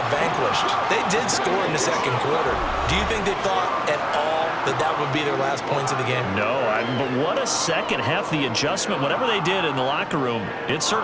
vanquished. They did score in the second quarter. Do you think they thought at all that that would be their last points of the game? No, but what a second half. The adjustment, whatever they did in the locker room, it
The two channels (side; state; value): both; identical; correlation 1.00